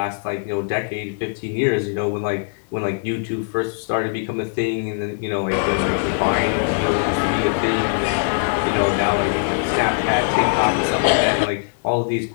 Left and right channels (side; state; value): right; silent; 65 dB below the other